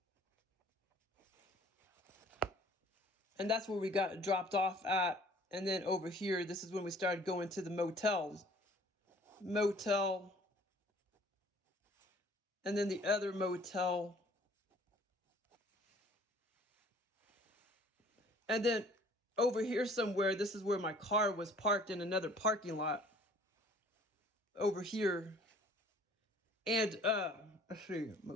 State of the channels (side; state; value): both; normal; correlation 0.54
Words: And that's where we got dropped off at. And then over here, this is when we started going to the motels. Motel. And then the other motel. And then over here somewhere, this is where my car was parked in another parking lot. Over here. And, let's see,